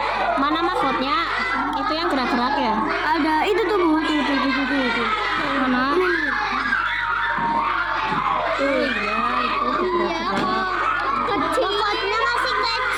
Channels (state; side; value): noise; left; hum, 17 dB below the sound